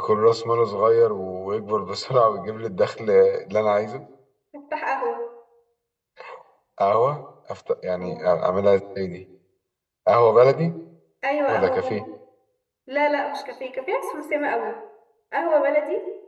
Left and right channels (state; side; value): identical; both; correlation 1.00